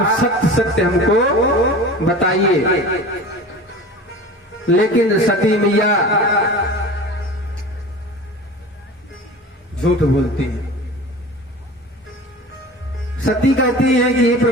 सत्य सत्य हमको बताइए। लेकिन सती मैया झूठ बोलती है। सती कहती है कि हे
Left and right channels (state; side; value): normal; both; correlation 0.36